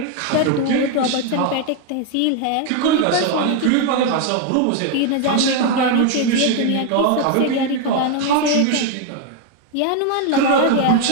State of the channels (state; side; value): different; both; correlation 0.01